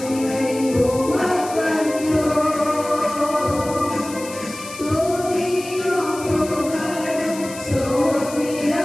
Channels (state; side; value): noise; left; hiss, 14 dB below the sound